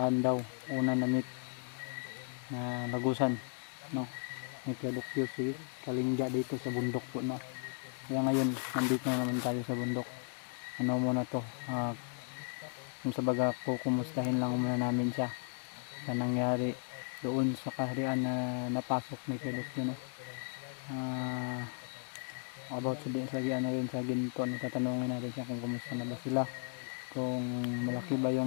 daw una na meet na lagusan, no, may Kuya si Kalingga dito sa bundok po, no. Kaya ngayon nandito na naman tayo sa bundok. Ano muna to, kung sa baga po, kumustahin lang muna namin siya sa nangyari doon sa kaharian na napasok ni Kuya no. About sa ano rin sa ginto, no, tatanungin natin siya kung kumusta na ba sila, kung malaki ba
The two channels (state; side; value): silent; right; 54 dB below the other